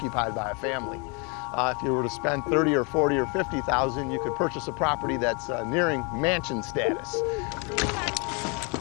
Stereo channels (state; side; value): quieter; right; 33.1 dB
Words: by a family. If you were to spend $30,000 or $40,000 or $50,000, you could purchase a property that's nearing mansion status.